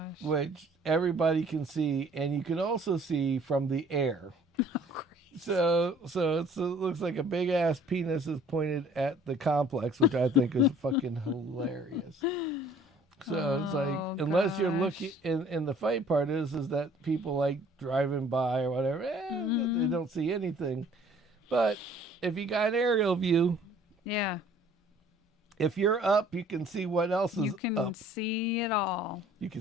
Which everybody can see, and you can also see from the air. So it looks like a big ass penis is pointed at the complex, which I think is fucking hilarious. So it's like, unless you're looking, and the funny part is that people like driving by or whatever, they don't see anything. But if you got an aerial view, yeah, if you're up, you can see what else is up. You can see it all. You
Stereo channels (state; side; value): normal; both; correlation 0.55